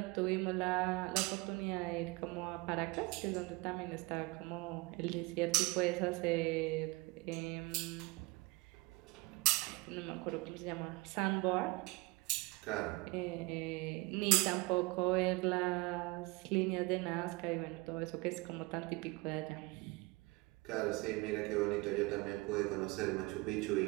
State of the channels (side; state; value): left; quieter; 24.4 dB